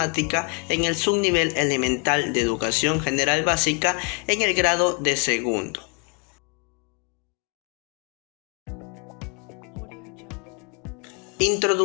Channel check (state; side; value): quieter; right; 35.6 dB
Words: en el subnivel elemental de educación general básica en el grado de segundo.